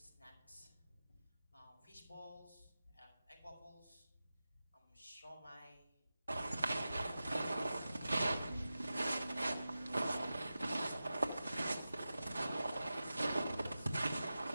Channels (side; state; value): both; inverted; correlation -0.94